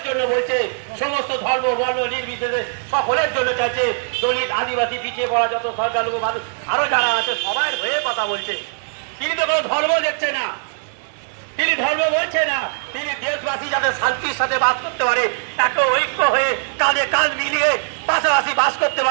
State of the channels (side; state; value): left; silent; digital silence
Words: জন্য বলছে। সমস্ত ধর্ম বর্ণ নির্বিশেষে সকলের জন্য চাইছে। দলিত, আদিবাসী, পিছিয়ে পড়া যত সংখ্যালঘু মানুষ আরো যারা আছে সবার হয়ে কথা বলছে। তিনি তো কোনো ধর্ম দেখছে না, তিনি ধর্ম বলছে না। তিনি দেশবাসী যাতে শান্তির সাথে বাস করতে পারে, এত ঐক্য হয়ে কাঁধে কাঁধ মিলিয়ে পাশাপাশি বাস করতে